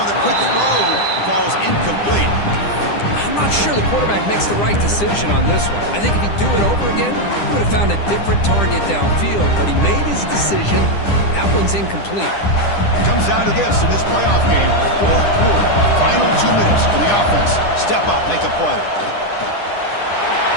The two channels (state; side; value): late; right; 10 ms